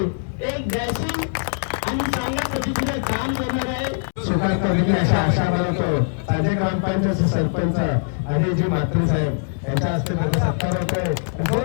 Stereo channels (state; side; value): silent; right; digital silence